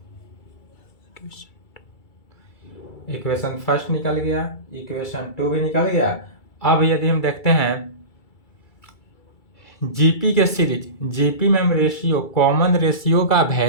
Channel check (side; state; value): right; late; 2.3 ms